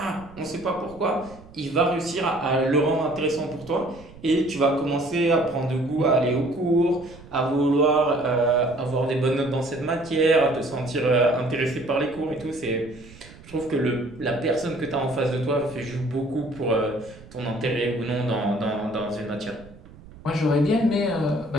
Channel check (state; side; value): noise; right; rumble, 21 dB below the sound